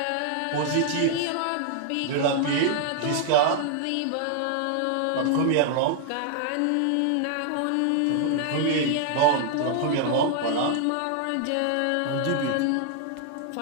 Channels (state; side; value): different; both; correlation 0.00